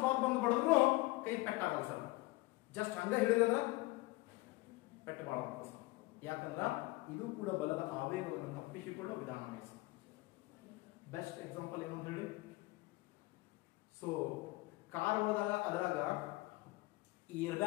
ಬಾಲ್ ಬಂದು ಬಡಿದ್ರು ಕೈ ಪೆಟ್ಟಾಗಲ್ಲ ಸರ್. ಜಸ್ಟ್ ಹಂಗ ಹಿಡಿದ ಪೆಟ್ಟು ಬಾಳ ಸರ್. ಯಾಕಂದ್ರ ಇದು ಕೂಡ ಬಲದ ಆವೇಗವನ್ನು ತಪ್ಪಿಸಿಕೊಳ್ಳುವ ವಿಧಾನ ಸರ್. ಬೆಸ್ಟ್ ಎಕ್ಸಾಂಪಲ್ ಏನು ಅಂತ ಹೇಳಿ, ಸೊ ಕಾರ್ ಹೋದಾಗ ಅದರಾಗ ಏರ್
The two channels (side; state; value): right; quieter; 21.1 dB